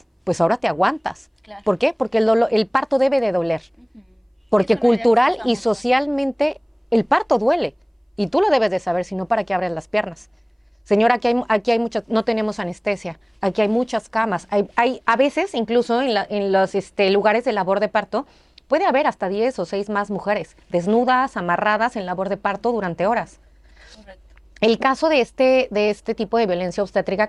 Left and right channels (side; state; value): both; identical; correlation 1.00